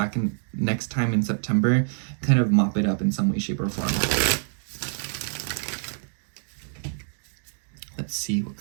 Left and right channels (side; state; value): left; silent; digital silence